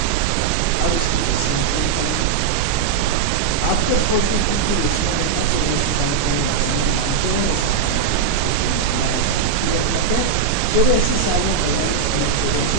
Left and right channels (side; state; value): left; quieter; 6.1 dB